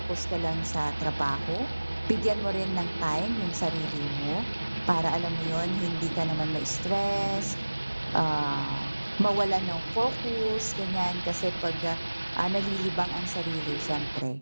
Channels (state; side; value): inverted; both; correlation -1.00